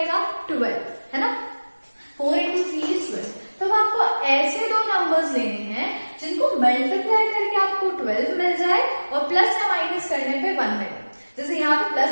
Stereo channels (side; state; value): both; inverted; correlation -1.00